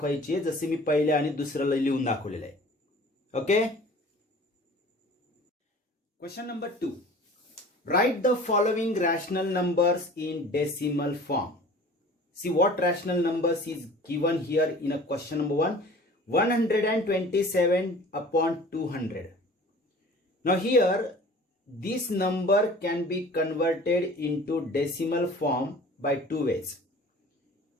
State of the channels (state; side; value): normal; both; correlation 0.45